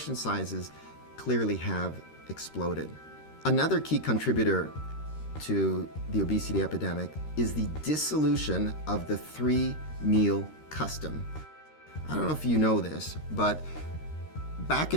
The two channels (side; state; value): right; late; 13 ms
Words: sizes clearly have exploded. Another key contributor to the obesity epidemic is the dissolution of the 3-meal custom. I don't know if you know this, but back